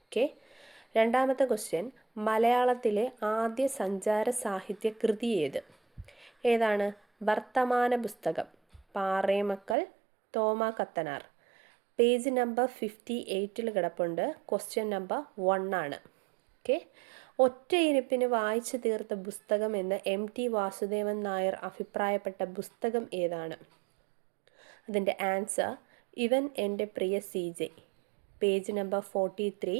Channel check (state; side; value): drops out; left; at 9.8 s